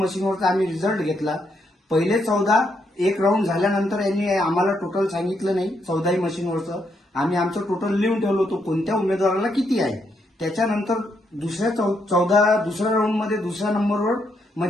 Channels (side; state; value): both; normal; correlation 0.77